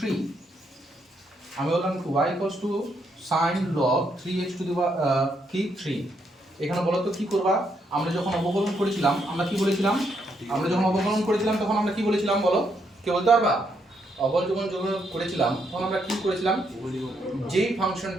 আমি বললাম y equals two sin log 3x to দি কি 3। এখানে বলো তো কি করবা? আমরা যখন অবকলন করেছিলাম আমরা কি বলেছিলাম? আমরা যখন অবকলন করেছিলাম তখন আমরা কি বলেছিলাম বলো? কে বলতে পারবা? অবকলন যখন করেছিলাম তখন আমরা কি করেছিলাম? যেই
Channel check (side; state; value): both; normal; correlation 0.76